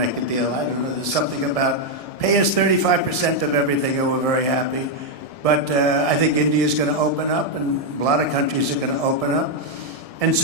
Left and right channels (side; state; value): right; late; 1.7 ms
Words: a deal. I don't know. There's something about pay us 35% of everything, and we're very happy. But I think India is going to open up, and a lot of countries are going to open up. And